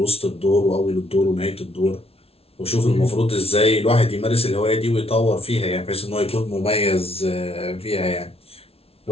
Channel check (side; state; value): right; late; 0.29 ms